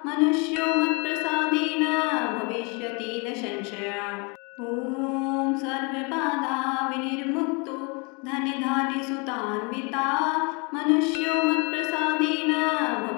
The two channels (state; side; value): quieter; right; 31.8 dB